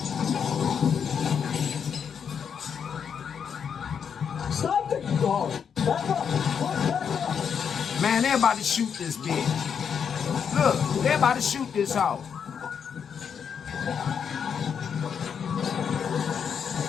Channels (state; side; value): quieter; right; 7.2 dB